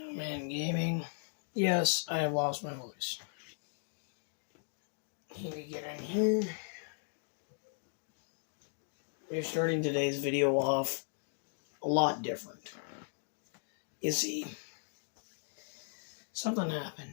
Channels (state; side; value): silent; right; digital silence